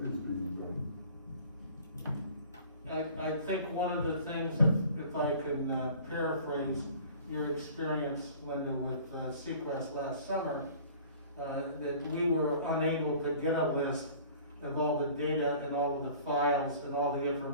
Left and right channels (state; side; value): inverted; both; correlation -0.47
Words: being done. I think one of the things, if I can paraphrase your experience, Linda, with Seacrest last summer, that we were unable to get a list of all the data and all of the files and all the